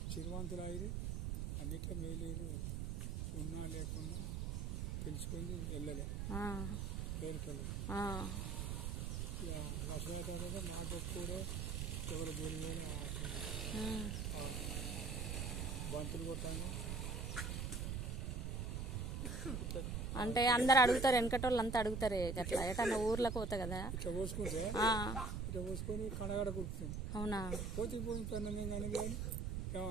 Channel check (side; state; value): right; noise; rumble, 2 dB below the sound